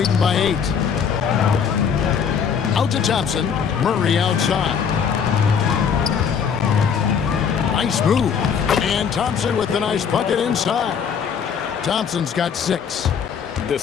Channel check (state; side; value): quieter; right; 7.0 dB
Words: by 8. Out to Thompson. Murray outside. Nice move. And Thompson with the nice bucket inside. Thompson's got 6.